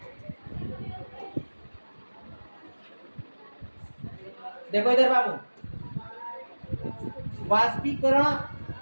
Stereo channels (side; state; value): both; inverted; correlation -1.00